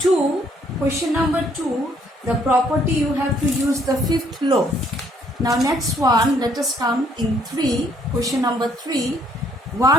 question number 2, the property you have to use the fifth law. Now, next one, let us come in 3, question number 3,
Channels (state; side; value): normal; both; correlation 0.66